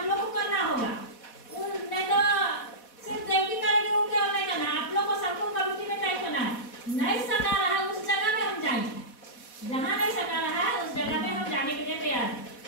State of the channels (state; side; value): late; right; 4.1 ms